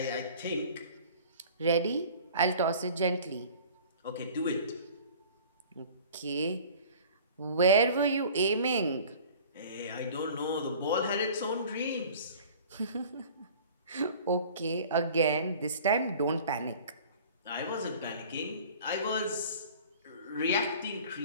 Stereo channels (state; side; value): inverted; both; correlation -0.45